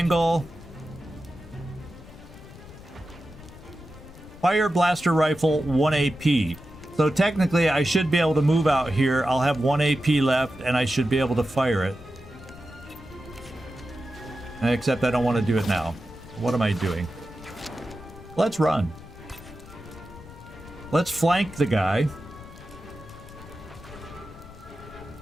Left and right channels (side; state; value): left; noise; rumble, 18 dB below the sound